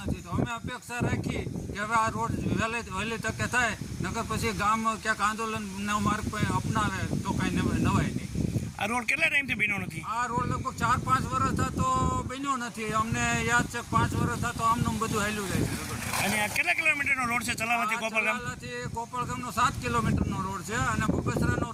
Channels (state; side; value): identical; both; correlation 1.00